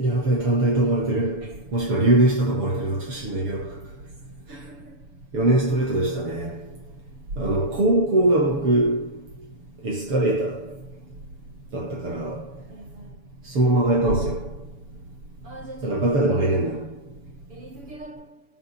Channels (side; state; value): left; late; 7.0 ms